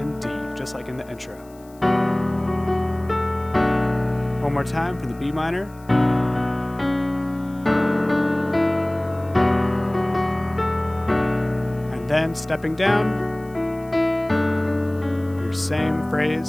D, just like in the intro. One more time for the B minor. And then stepping down, your same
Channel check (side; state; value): left; noise; hiss, 28 dB below the sound